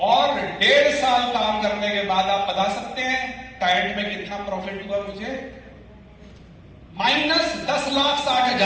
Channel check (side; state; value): both; identical; correlation 1.00